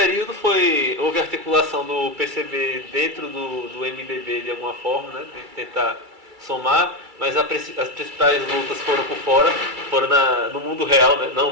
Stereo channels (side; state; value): left; late; 2.3 ms